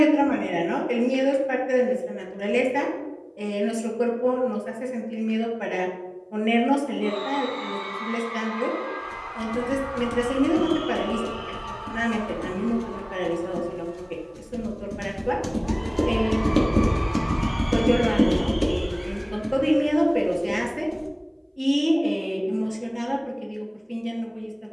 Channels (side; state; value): both; identical; correlation 1.00